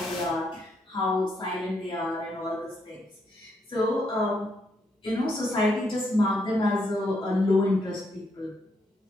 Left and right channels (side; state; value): both; normal; correlation 0.76